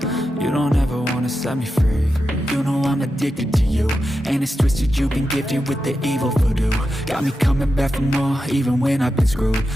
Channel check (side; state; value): both; normal; correlation 0.89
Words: You don't ever wanna set me free. You know I'm addicted to you, and it's twisted, you've been gifted with the evil voodoo. Got me coming back for more, even when I've been screwed.